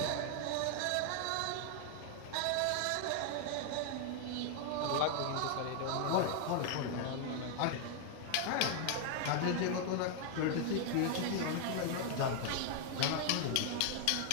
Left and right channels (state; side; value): different; both; correlation 0.00